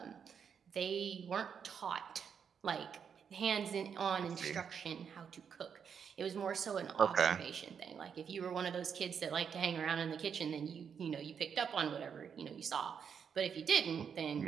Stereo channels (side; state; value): left; quieter; 7.1 dB